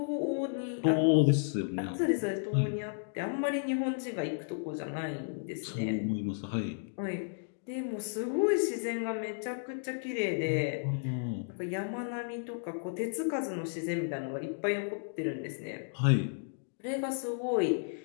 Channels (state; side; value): silent; right; digital silence